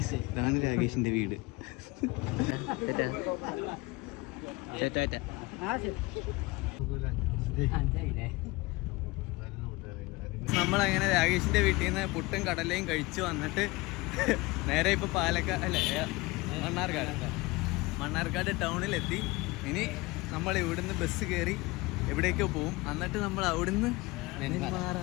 ഇതാണ് രാകേഷിന്റെ വീട്. നമ്മളങ്ങനെ രാകേഷിന്റെ വീട്ടിൽ നിന്ന് പുട്ടും കടലയും കഴിച്ചു വന്നിട്ട് നേരെ ഇപ്പൊ മണ്ണാർക്കാട് ടൗണിലെത്തി. ഇനി നമ്മൾ ഇവിടുന്ന് ബസ് കയറി എവിടേക്കോ പോവും. എന്നിട്ട് നമ്മൾ അവിടുന്ന്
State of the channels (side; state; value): right; quieter; 22.8 dB